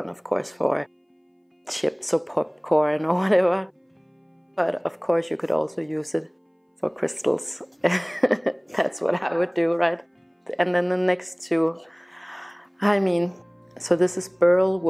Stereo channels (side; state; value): both; identical; correlation 1.00